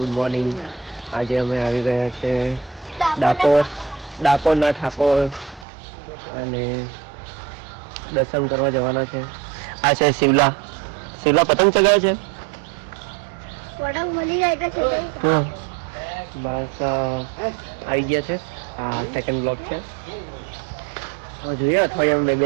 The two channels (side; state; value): left; drops out; at 5.7 s